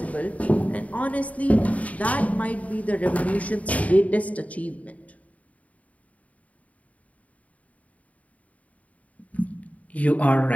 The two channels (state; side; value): late; right; 0.069 ms